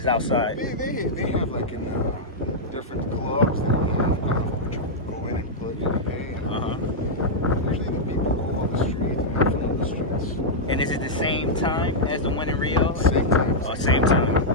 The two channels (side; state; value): both; normal; correlation -0.07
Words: outside. They have like in different clubs, they have Carnival, which you go in and plug and pay. And usually the people go on the street and have fun on the streets. And is it the same time as the one in Rio? Same time. Oh, same time.